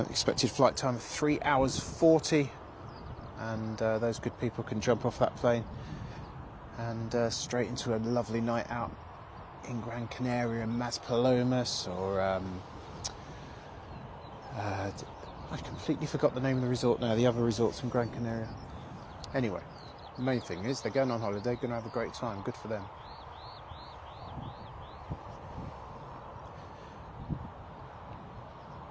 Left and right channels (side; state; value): both; identical; correlation 1.00